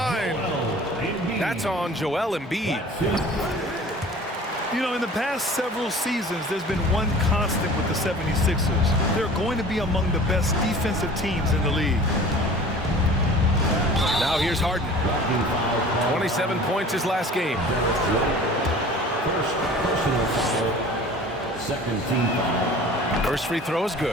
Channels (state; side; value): normal; both; correlation 0.44